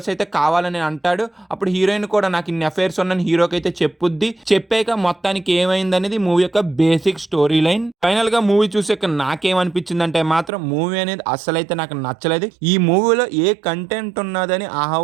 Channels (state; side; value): drops out; left; at 10.5 s